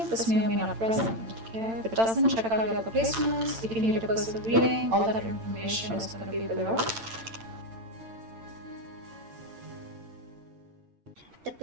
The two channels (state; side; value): late; left; 8.9 ms